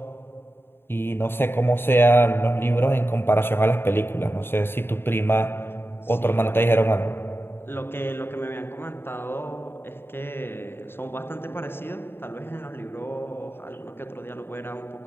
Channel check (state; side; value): late; right; 0.11 ms